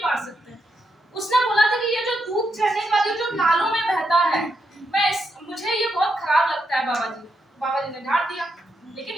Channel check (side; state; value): both; normal; correlation 0.82